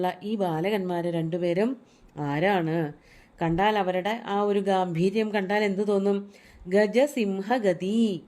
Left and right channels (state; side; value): identical; both; correlation 1.00